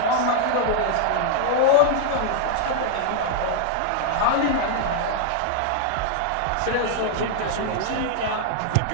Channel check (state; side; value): different; both; correlation -0.01